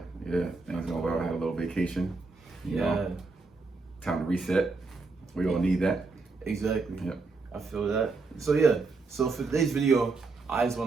Things going well. I had a little vacation. You know, time to reset. We all need that. Exactly. Yep. I feel that. So for today's video, I just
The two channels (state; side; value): quieter; left; 3.9 dB